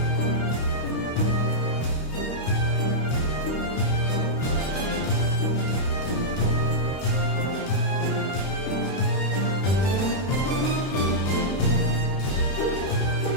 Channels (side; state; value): right; late; 32 ms